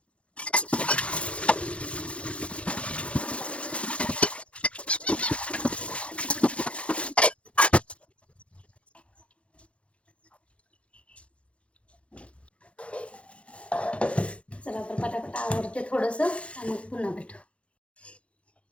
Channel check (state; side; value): late; right; 0.061 ms